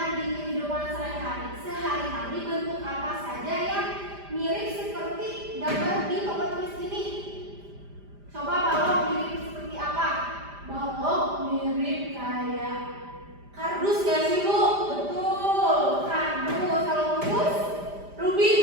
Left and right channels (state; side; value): late; left; 5.0 ms